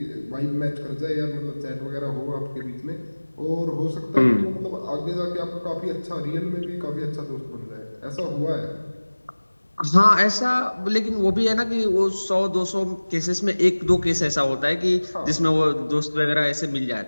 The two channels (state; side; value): inverted; both; correlation -1.00